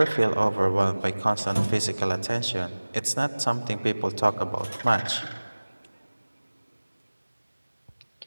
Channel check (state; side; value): inverted; both; correlation -1.00